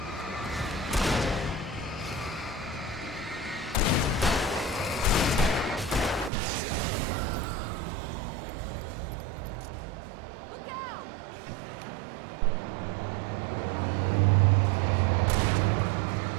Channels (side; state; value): left; drops out; at 6.3 s